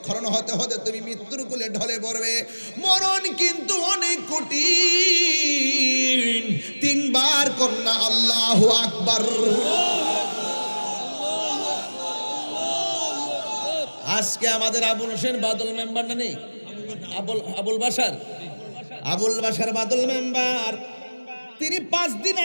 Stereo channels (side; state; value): both; inverted; correlation -1.00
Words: হতে হতে তুমি মৃত্যুর কোলে ঢলে পড়বে। মরণ কিন্তু অনেক কঠিন। 3 বার কন্যা আল্লাহু আকবার। আজকে আমাদের আবুল হোসেন বাদল মেম্বার না নেই, আবুল বাসার বাদল মেম্বার, তিনি 5 দিন